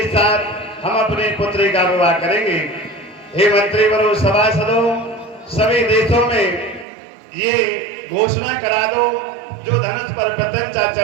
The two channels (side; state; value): left; drops out; at 6.9 s